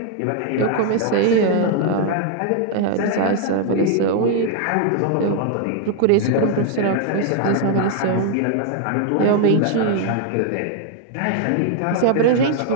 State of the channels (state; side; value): different; both; correlation 0.00